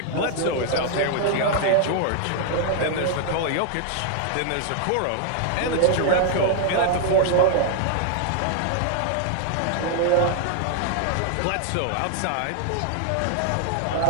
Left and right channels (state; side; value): different; both; correlation 0.00